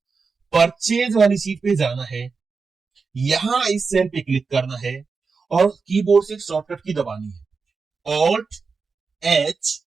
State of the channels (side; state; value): left; quieter; 4.8 dB